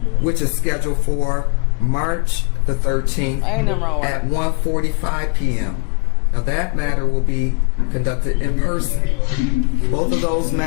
which is scheduled for March the 13th Ain't nothing wrong with at that. 1:45 p.m. Now that matter will be conducted in person. Both of those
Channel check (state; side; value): quieter; right; 33.9 dB